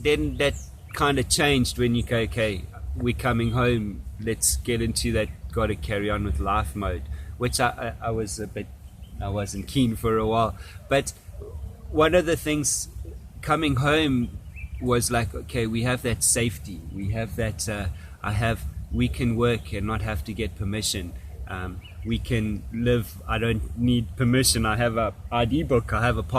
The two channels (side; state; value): both; identical; correlation 1.00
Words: kind of changed when you go, okay, we're coming home, let's get into that gotta carry on with life mode, which I wasn't keen for a while. But one of the things coming home was like, okay, we have that safety, we have that we can work and not have to get permission. We can live, I don't need permission, I have a ID book, I have a